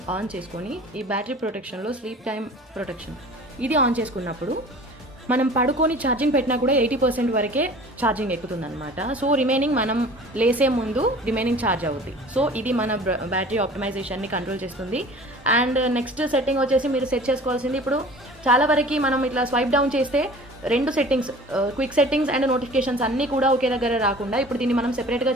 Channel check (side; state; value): both; normal; correlation 0.44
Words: ఆన్ చేసుకొని ఈ బ్యాటరీ ప్రొటెక్షన్లో స్లీప్ టైం ప్రొటెక్షన్ ఇది ఆన్ చేసుకున్నప్పుడు మనం పడుకొని ఛార్జింగ్ పెట్టినా కూడా 80% వరకే ఛార్జింగ్ ఎక్కుతుంది అనమాట. సో రిమైనింగ్ మనం లేసే ముందు రిమైనింగ్ ఛార్జ్ అవుతుంది. సో ఇది మన బ్యాటరీ ఆప్టిమైజేషన్ని కంట్రోల్ చేస్తుంది. అండ్ నెక్స్ట్ సెట్టింగ్ వచ్చేసి మీరు సెట్ చేసుకోవాల్సింది, ఇప్పుడు చాలా వరకు మనం ఇట్లా స్వైప్ డౌన్ చేస్తే రెండు settings, quick settings and notifications అన్నీ కూడా ఒకే దగ్గర రాకుండా ఇప్పుడు దీన్ని మనం సెపరేట్గా